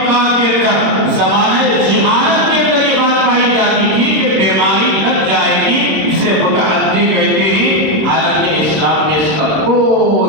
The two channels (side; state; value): left; late; 26 ms